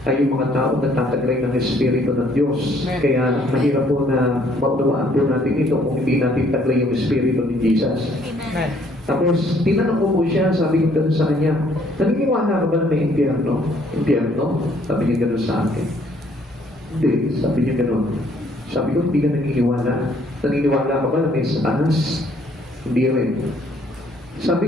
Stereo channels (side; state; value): both; normal; correlation 0.64